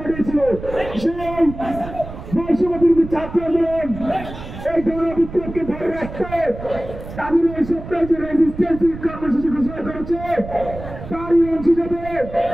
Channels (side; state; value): right; noise; rumble, 12 dB below the sound